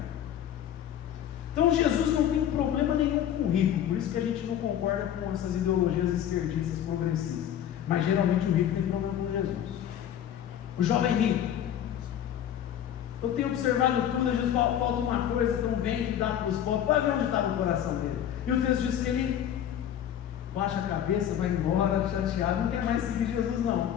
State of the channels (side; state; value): right; quieter; 10.3 dB